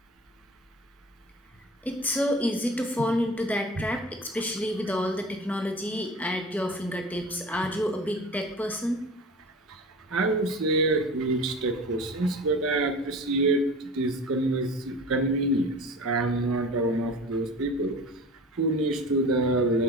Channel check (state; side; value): normal; both; correlation 0.38